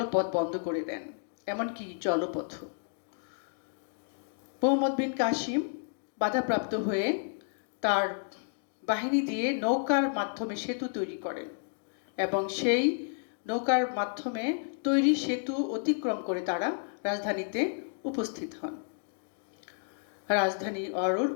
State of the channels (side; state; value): right; silent; digital silence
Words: পথ বন্ধ করে দেন, এমনকি জলপথ। মোহাম্মদ বিন কাসিম বাধাপ্রাপ্ত হয়ে তার বাহিনী দিয়ে নৌকার মাধ্যমে সেতু তৈরি করেন এবং সেই নৌকার মাধ্যমে তৈরি সেতু অতিক্রম করে তারা রাজধানীতে উপস্থিত হন। রাজধানী অরোর